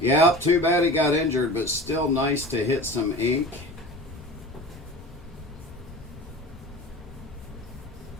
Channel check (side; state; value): both; normal; correlation 0.36